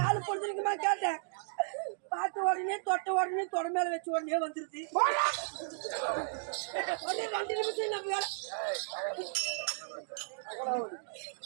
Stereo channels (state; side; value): silent; left; digital silence